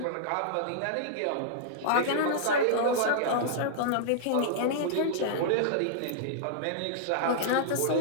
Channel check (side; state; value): both; different; correlation -0.02